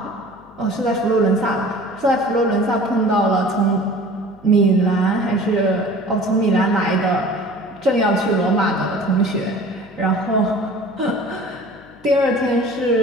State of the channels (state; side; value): noise; left; hum, 26 dB below the sound